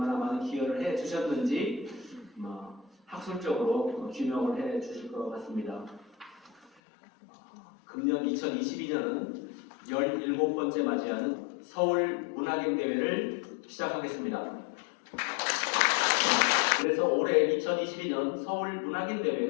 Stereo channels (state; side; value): drops out; right; at 6.7 s